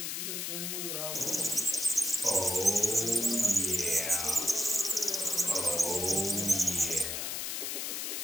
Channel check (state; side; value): noise; left; hiss, 3 dB below the sound